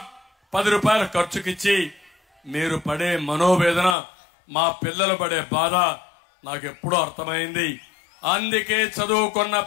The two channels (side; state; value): right; drops out; at 4.0 s